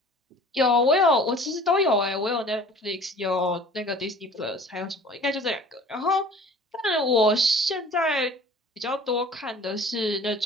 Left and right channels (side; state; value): both; normal; correlation 0.47